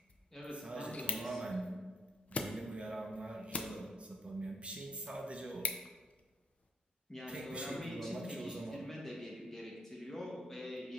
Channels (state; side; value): normal; both; correlation 0.71